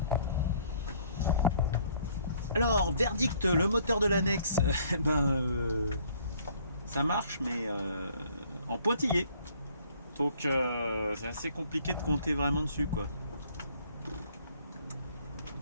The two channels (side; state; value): both; inverted; correlation -0.61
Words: Alors, verdict, le moteur de l'annexe, ça marche, mais en pointillé. Donc c'est assez compliqué de compter vraiment dessus, quoi.